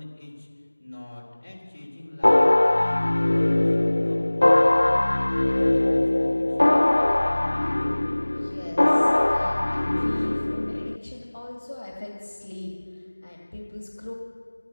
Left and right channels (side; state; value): both; inverted; correlation -1.00